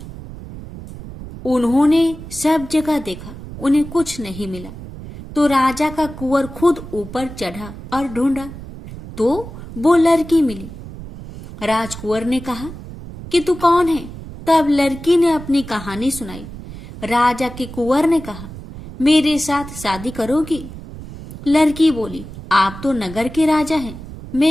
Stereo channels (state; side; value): noise; right; rumble, 13 dB below the sound